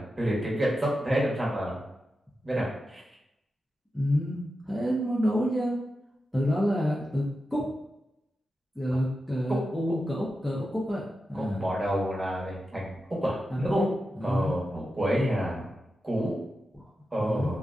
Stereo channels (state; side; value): normal; both; correlation 0.90